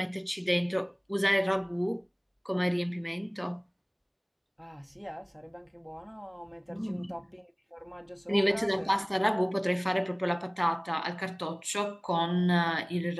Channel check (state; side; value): identical; both; correlation 1.00